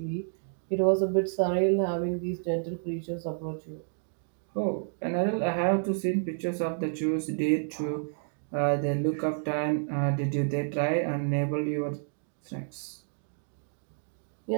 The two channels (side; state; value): left; silent; digital silence